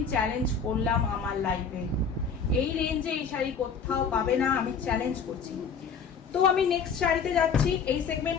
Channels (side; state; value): right; quieter; 5.8 dB